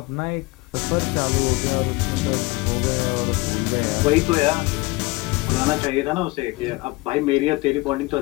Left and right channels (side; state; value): right; quieter; 23.3 dB